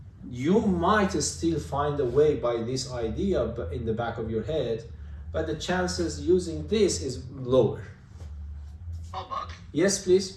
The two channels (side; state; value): both; identical; correlation 1.00